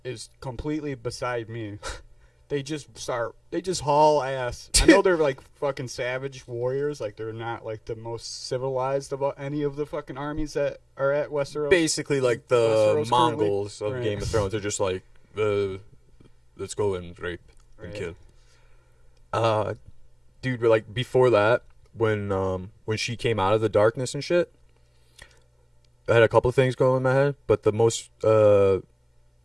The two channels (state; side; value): identical; both; correlation 1.00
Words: is completely beside me. They just haul ass. I know they're like fucking savage warriors. Like they're not like the most civilized of any of the fucking armies that are at Westeros. Basically, like the Westeros Mongols currently. of Right. Game of Thrones. They're just like, let's go and rape and Right. kill. Dude, like before that, when she came out of the darkness and shit, I had a couple of things going in my head, but the most